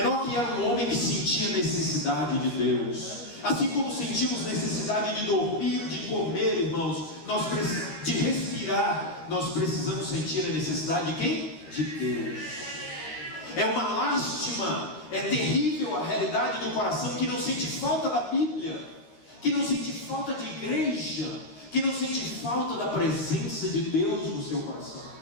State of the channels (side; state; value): right; late; 13 ms